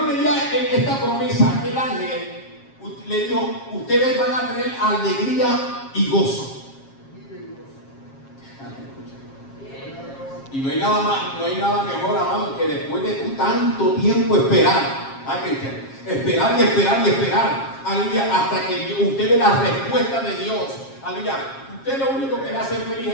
le dio esta promesa a aquel ángel, le dijo, ustedes van a tener alegría y gozo. Y no hay nada más, no hay nada mejor, amado, que después de tú tanto tiempo esperar, esperar y esperar y esperar, aleluya, hasta que usted ve la respuesta de Dios, aleluya. Usted lo único que le hace feliz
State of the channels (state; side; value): late; right; 7.4 ms